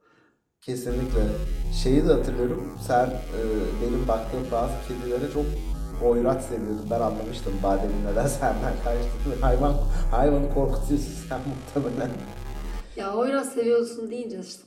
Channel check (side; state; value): both; identical; correlation 1.00